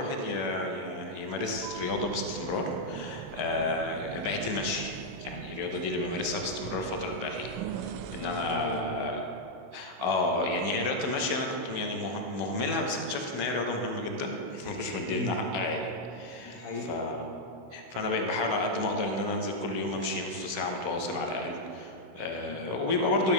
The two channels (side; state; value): left; late; 16 ms